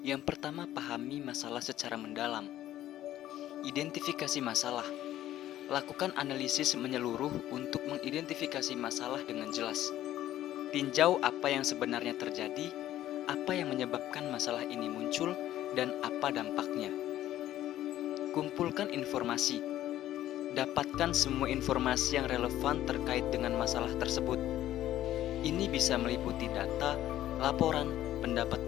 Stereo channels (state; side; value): quieter; right; 13.2 dB